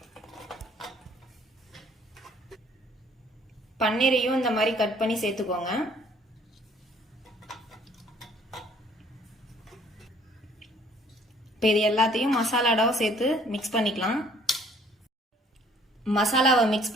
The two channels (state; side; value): normal; both; correlation 0.59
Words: பன்னீரையும் இந்த மாதிரி கட் பண்ணி சேர்த்துக்கோங்க. இப்போ இது எல்லாத்தையும் மசாலாடாவை சேர்த்து மிக்ஸ் பண்ணிக்கலாம். மசாலாவை மிக்ஸ்